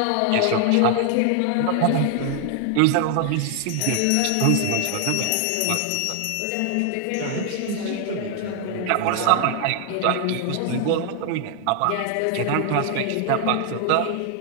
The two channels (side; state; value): both; different; correlation 0.00